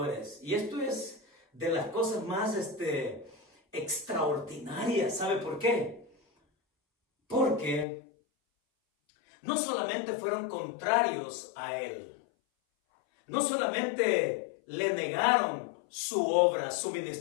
Y esto es de las cosas más extraordinarias. ¿Sabe por qué? Porque no solamente fueron contrarios a Él, no solamente le negaron su obra, su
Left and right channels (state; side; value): drops out; right; at 7.9 s